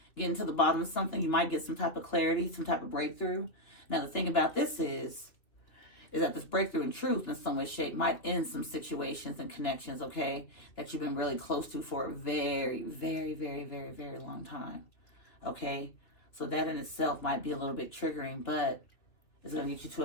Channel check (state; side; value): late; right; 2.6 ms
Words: getting to the bottom of something, you might get some type of clarity, some type of breakthrough. Now, the thing about this is that this breakthrough in truth in some way, shape, might end some situations and connections, okay, that you've been really close to for a very, very, very, very, very long time, okay? So that in itself might be a little bit triggering, but it's going to get you to